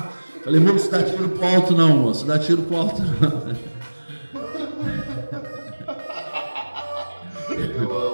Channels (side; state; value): both; inverted; correlation -1.00